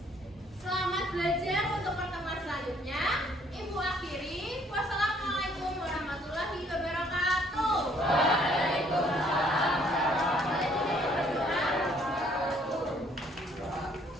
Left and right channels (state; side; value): normal; both; correlation 0.63